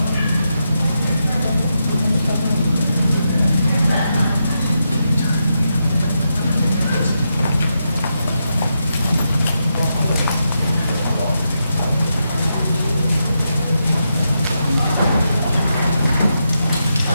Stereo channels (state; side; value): inverted; both; correlation -0.85